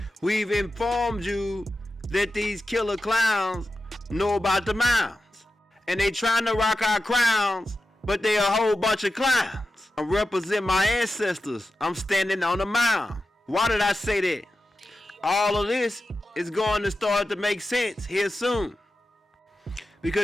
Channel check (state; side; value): normal; both; correlation 0.91